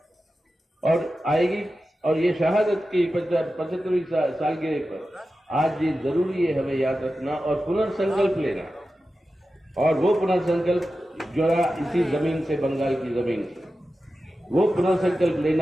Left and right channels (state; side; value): normal; both; correlation 0.93